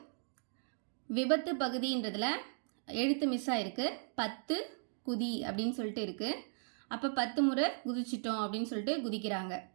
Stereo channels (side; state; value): left; silent; digital silence